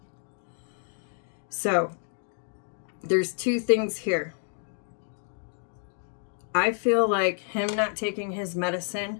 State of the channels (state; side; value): silent; right; 58 dB below the other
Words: So there's 2 things here. I feel like him not taking his medicine